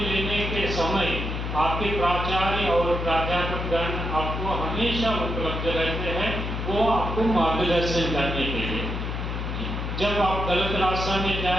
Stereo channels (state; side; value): noise; left; hum, 3 dB below the sound